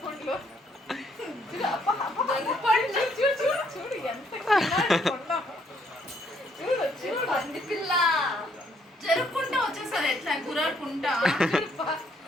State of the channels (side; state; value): both; normal; correlation 0.69